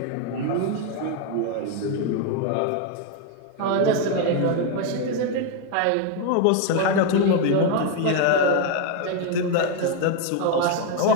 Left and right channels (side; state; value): both; different; correlation 0.01